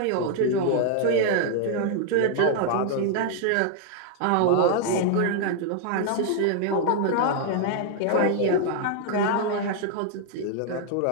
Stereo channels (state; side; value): different; both; correlation 0.00